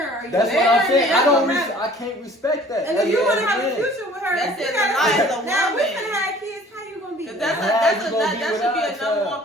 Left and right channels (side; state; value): both; normal; correlation 0.51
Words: are you? That's what I'm saying. That's gonna matter. I can't respect that. And if you want to have a Again. future with her, That's you it, gotta- the life of the now we woman. can have kids. How you gonna be? That you gonna be should without be a a number child. one